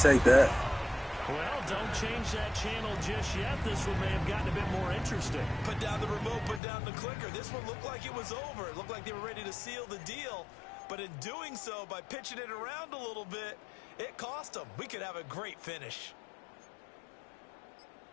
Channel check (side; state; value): right; drops out; at 6.6 s